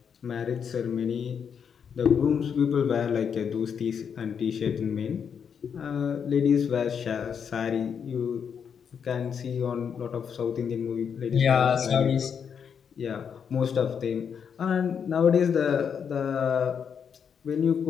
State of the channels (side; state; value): right; quieter; 7.2 dB